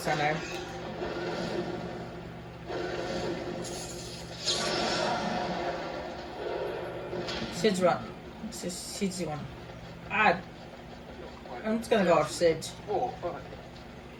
her name. Sid's one. I'm just gonna go off Sid. Oh, fine.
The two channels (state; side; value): identical; both; correlation 1.00